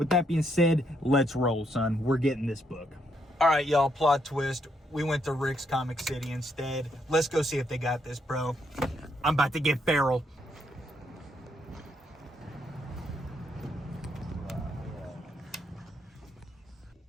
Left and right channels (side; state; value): both; normal; correlation 0.75